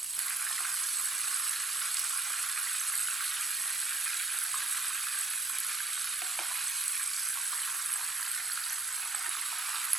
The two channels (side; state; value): left; quieter; 3.1 dB